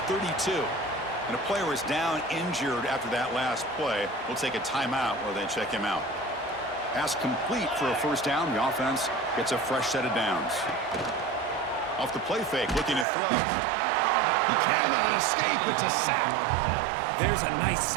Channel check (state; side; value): drops out; left; at 13.1 s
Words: 32. And a player is down injured after that last play. We'll take a timeout while they check him out. Pass complete for a first down. The offense gets a fresh set of downs. Off the play fake, looking to throw. He cannot escape. It's a sack. There's a nice